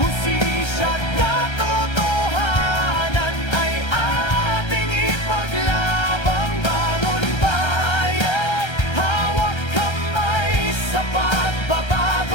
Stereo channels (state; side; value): late; right; 1.3 ms